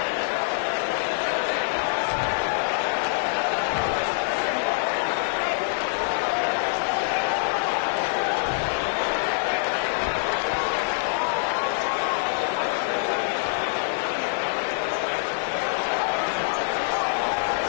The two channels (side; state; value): right; silent; digital silence